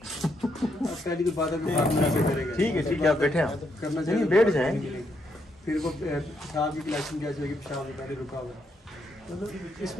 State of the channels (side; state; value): both; normal; correlation 0.77